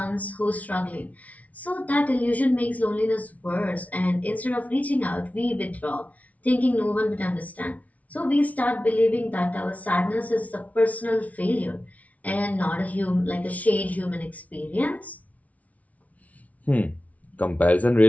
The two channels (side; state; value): right; late; 0.069 ms